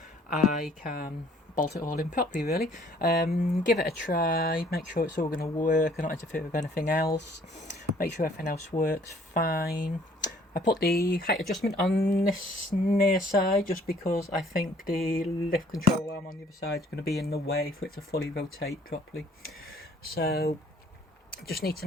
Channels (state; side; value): normal; both; correlation 0.59